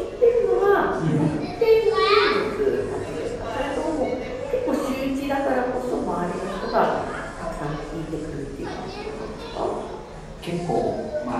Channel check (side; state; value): both; identical; correlation 1.00